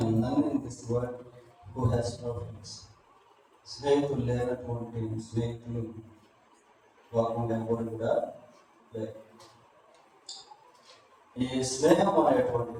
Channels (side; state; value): both; identical; correlation 1.00